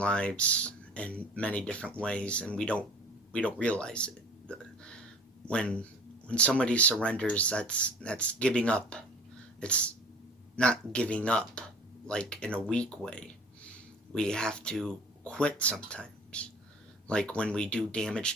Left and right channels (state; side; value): normal; both; correlation 0.45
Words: in many different ways, and we don't realize it. When when somebody surrenders, that's giving up. It's not giving up like in a weak way. We have to quit sometimes. Like when we do damage